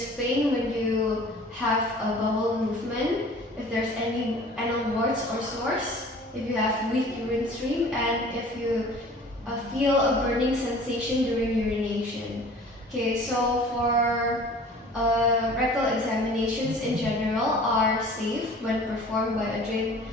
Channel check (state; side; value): normal; both; correlation 0.46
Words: pain when you have a bowel movement, if there's any anal warts or sores, if you have weak urine stream, and if you feel a burning sensation during urination. Okay, so for rectal examinations in general are safe when performed by a trained